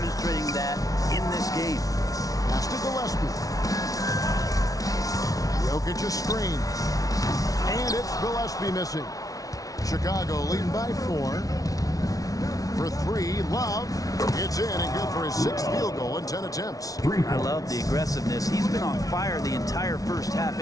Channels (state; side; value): late; right; 0.18 ms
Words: that in this game. Pass to Gillespie. Jokic a screen. And it's Gillespie missing. Chicago leading by 4. For 3, Love. It's in and good for his 6th field goal in 10 attempts. I love the aggressiveness. He's been on fire the entire first half